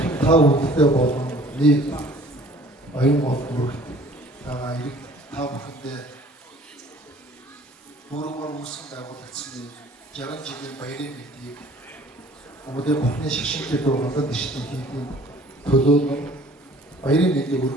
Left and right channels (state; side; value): normal; both; correlation 0.52